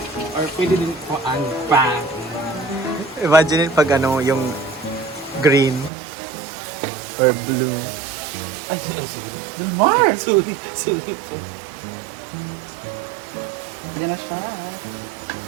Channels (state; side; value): drops out; left; at 5.9 s